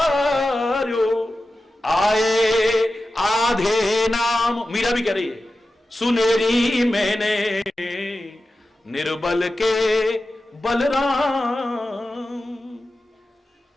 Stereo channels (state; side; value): normal; both; correlation 0.93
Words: आए आधे नाम। मीरा भी कह रही है, सुनेरी मैंने निर्बल के बलराम।